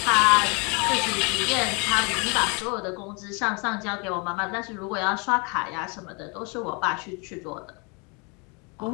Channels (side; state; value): right; quieter; 32.1 dB